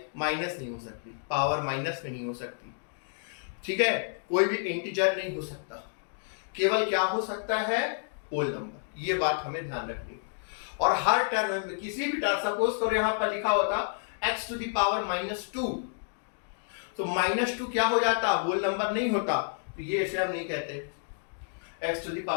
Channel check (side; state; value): right; silent; digital silence